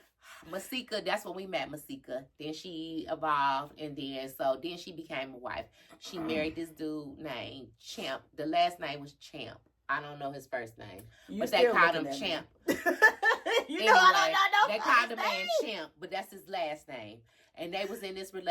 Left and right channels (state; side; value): identical; both; correlation 1.00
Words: Masika, that's when we met Masika. Then she evolved, and then she became a wife. She married this dude named Champ. The last name was Champ. I don't know his first name, but they called him Champ. They called the man Champ, but that's his last name. And they was in this